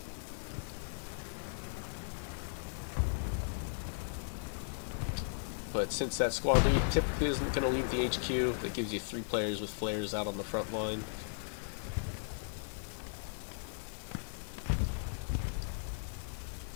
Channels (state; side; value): silent; right; digital silence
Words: But since that squad lead typically isn't going to leave the HQ, that gives you 3 players with flares out on the front line.